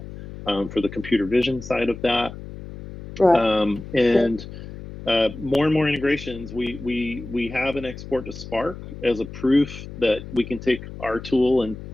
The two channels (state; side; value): noise; left; hum, 12 dB below the sound